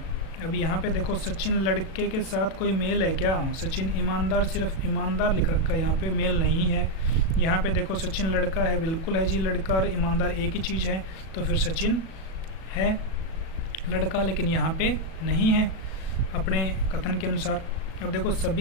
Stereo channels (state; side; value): late; right; 37 ms